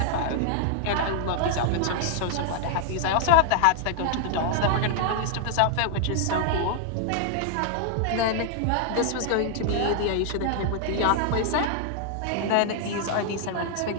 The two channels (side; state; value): both; different; correlation 0.00